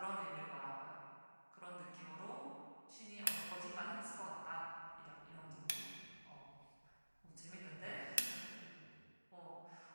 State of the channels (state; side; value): inverted; both; correlation -1.00